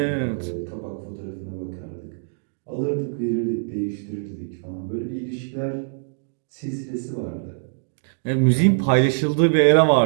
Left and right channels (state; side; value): silent; left; digital silence